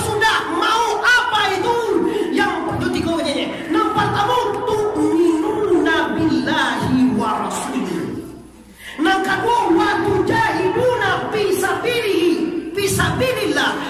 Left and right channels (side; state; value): both; identical; correlation 1.00